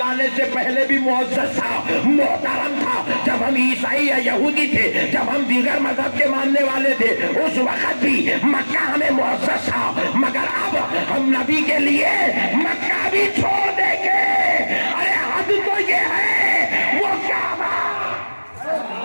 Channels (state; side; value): inverted; both; correlation -1.00